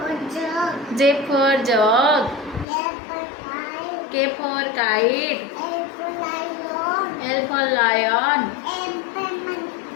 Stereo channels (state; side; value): drops out; right; at 2.7 s